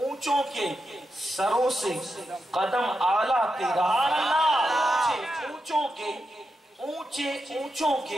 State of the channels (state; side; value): normal; both; correlation 0.87